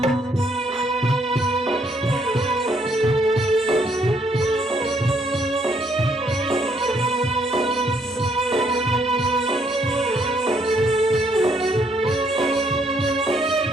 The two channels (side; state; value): both; normal; correlation 0.71